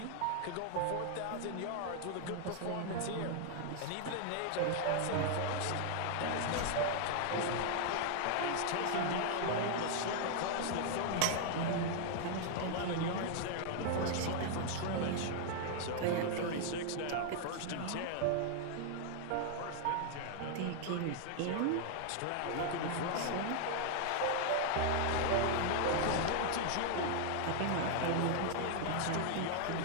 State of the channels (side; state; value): both; different; correlation 0.00